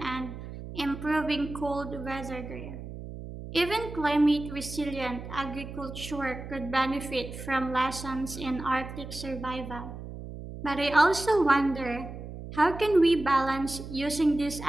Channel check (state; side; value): noise; right; hum, 11 dB below the sound